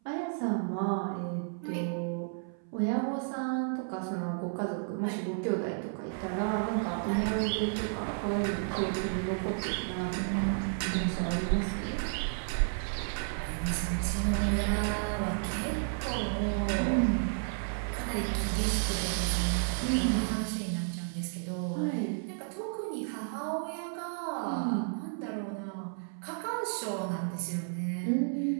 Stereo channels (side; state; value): left; silent; 56 dB below the other